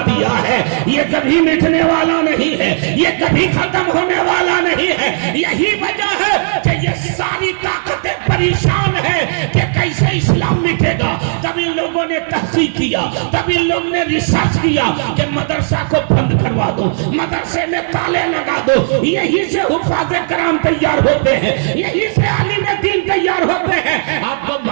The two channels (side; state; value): left; silent; digital silence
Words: دیا ہے۔ یہ کبھی مٹنے والا نہیں ہے، یہ کبھی ختم ہونے والا نہیں ہے۔ یہی وجہ ہے کہ یہ ساری طاقتیں پریشان ہیں کہ کیسے اسلام مٹے گا۔ تب ان لوگوں نے تحقیق کیا، تب ان لوگوں نے ریسرچ کیا کہ مدرسہ کو بند کروا دو، مدرسے میں تالے لگا دو، یہی سے حفاظ کرام تیار ہوتے ہیں، یہی سے عالم دین تیار ہوتے ہیں۔ آپ کو